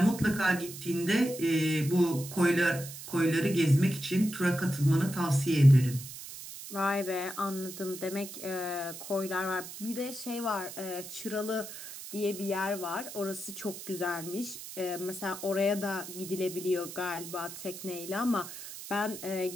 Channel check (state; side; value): noise; right; hiss, 11 dB below the sound